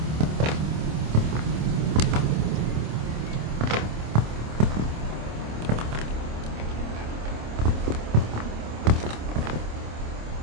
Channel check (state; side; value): late; left; 26 ms